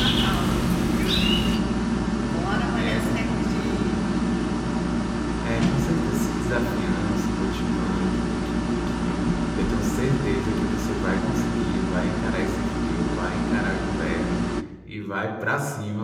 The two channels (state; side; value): identical; both; correlation 1.00